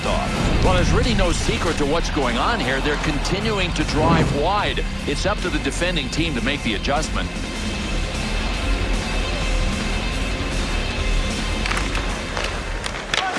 off. Well, there's really no secret to what's going on here. They're continuing to drive wide. It's up to the defending team to make the adjustment.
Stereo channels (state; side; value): identical; both; correlation 1.00